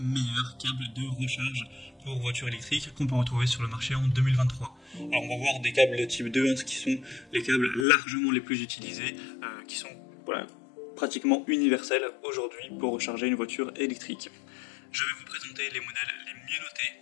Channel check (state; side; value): drops out; right; at 7.9 s